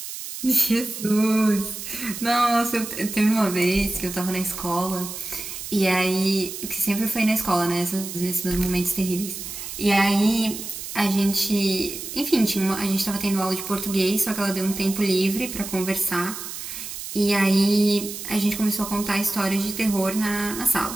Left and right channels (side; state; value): right; noise; hiss, 9 dB below the sound